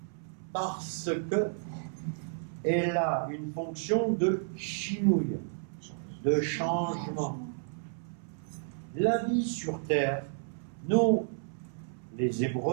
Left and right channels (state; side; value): silent; left; 57 dB below the other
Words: Parce que elle a une fonction de chinouille, de changement. La vie sur terre, nous, les